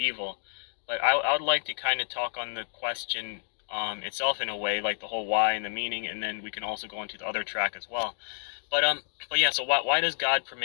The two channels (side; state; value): right; silent; digital silence